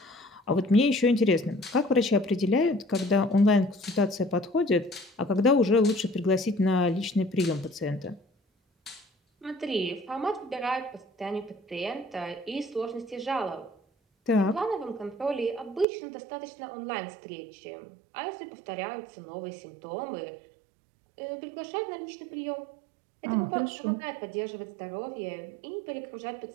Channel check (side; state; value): left; drops out; at 15.9 s